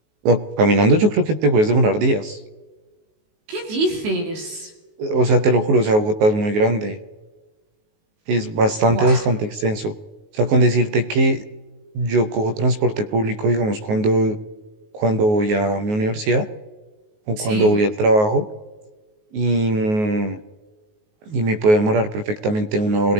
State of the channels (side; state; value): left; late; 19 ms